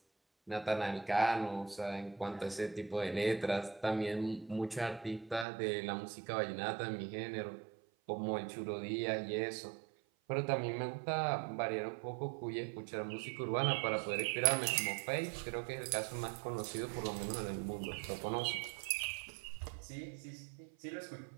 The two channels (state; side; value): drops out; left; at 5.5 s